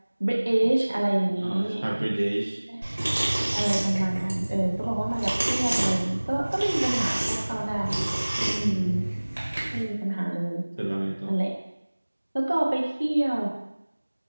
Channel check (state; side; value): inverted; both; correlation -1.00